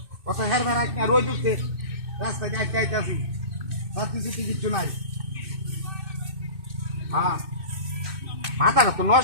কত হেরবার একটা রোজ উঠতে রাস্তায় যাইতে আইতাছি সাথে সাথে কিছু নাই হ্যাঁ মাথাটা তো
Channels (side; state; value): left; late; 2.6 ms